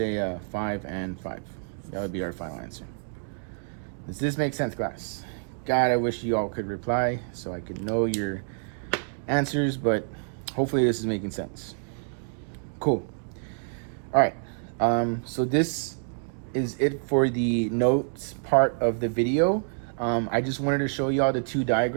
5 and 5. That would be our final answer. Does this make sense, class? God, I wish you all could reply so I could know your answers, but hopefully this is making sense. Cool. All right. So this is it for the notes part of the video. I just wanted to show you all the 2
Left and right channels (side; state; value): left; silent; digital silence